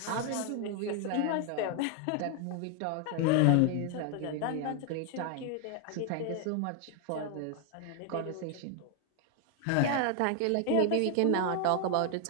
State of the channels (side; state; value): both; different; correlation 0.00